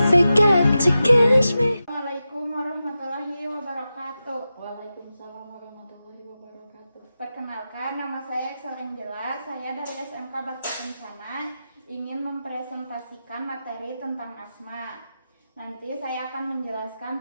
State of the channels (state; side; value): inverted; both; correlation -0.92